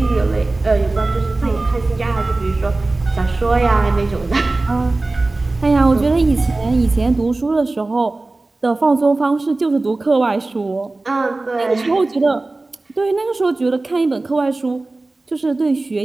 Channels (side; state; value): left; quieter; 3.1 dB